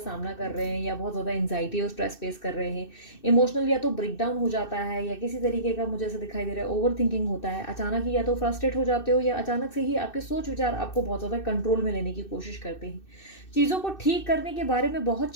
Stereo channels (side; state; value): right; late; 2.6 ms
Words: कर रहे हैं, या बहुत ज़्यादा एंजाइटी और स्ट्रेस फेस कर रहे हैं। इमोशनल या तो ब्रेकडाउन हो जाता है, या किसी तरीके का मुझे ऐसा दिखाई दे रहा है ओवर थिंकिंग होता है। अचानक ही या तो फ्रस्ट्रेट हो जाते हो, या अचानक से ही आपके सोच विचार आपको बहुत ज़्यादा कंट्रोल में लेने की कोशिश करते हैं। चीज़ों को ठीक करने के बारे में बहुत